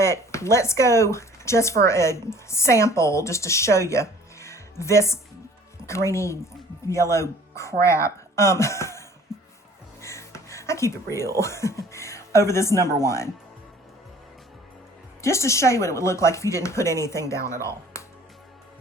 let's go just for a sample, just to show you this greeny yellow crap. I keep it real over this number 1. Just to show you what it would look like if you didn't put anything down at all.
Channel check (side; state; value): both; normal; correlation 0.51